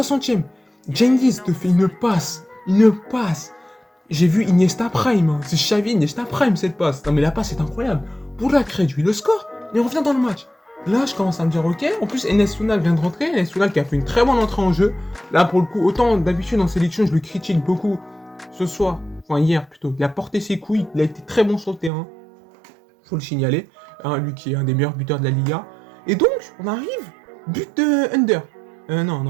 Cengiz te fait une passe. J'ai vu Iniesta Prime, hein. C'est Xavi Iniesta Prime cette passe. Non mais la passe est incroyable. Bourak réduit le score et on revient dans le match. Là je commence à me dire ok, en plus Enes Sounal vient de rentrer, Enes Sounal qui a fait une très bonne entrée en jeu. Là pour le coup, autant d'habitude en sélection je le critique beaucoup ce soir, enfin hier plutôt, il a porté ses couilles, il a été très bon sur le terrain. Faut le signaler, hein, lui qui est un des meilleurs buteurs de la Liga. Et donc on arrive, but de Under.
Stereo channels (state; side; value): drops out; left; at 21.9 s